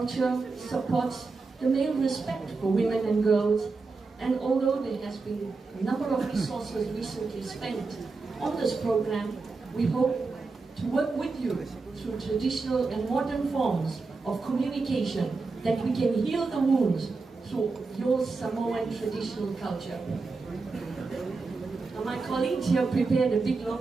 supports the male respect for women and girls, and although there has been a number of resources recently spent on this program, we hope to work with you through traditional and modern forms of communication that we can heal the wounds through your Samoan traditional culture. Now, my colleagues here prepared a big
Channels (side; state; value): left; quieter; 4.1 dB